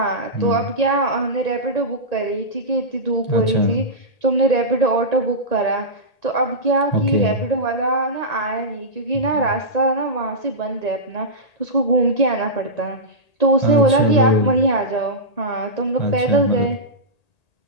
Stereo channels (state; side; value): late; right; 1.8 ms